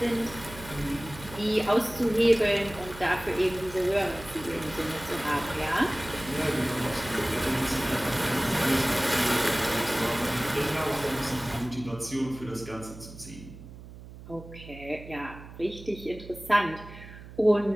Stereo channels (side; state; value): right; noise; hum, 16 dB below the sound